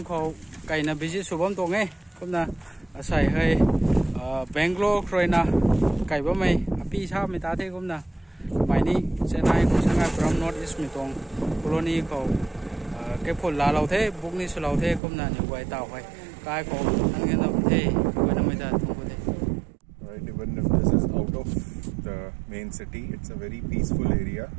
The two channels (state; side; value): drops out; left; at 15.0 s